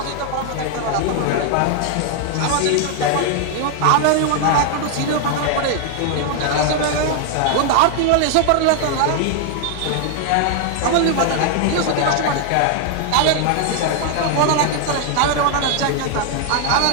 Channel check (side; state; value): both; different; correlation 0.00